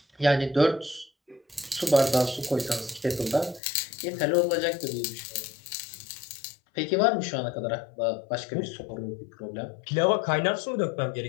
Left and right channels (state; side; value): drops out; right; at 3.6 s